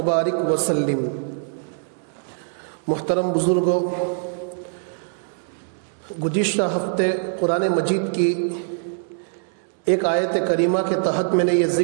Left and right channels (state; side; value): silent; left; 63 dB below the other